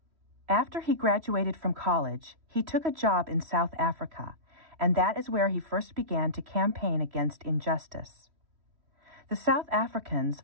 After he graduated from college, he took a job in South Africa, and that is where he first began to campaign against injustice. The South Africans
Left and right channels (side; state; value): left; late; 3.1 ms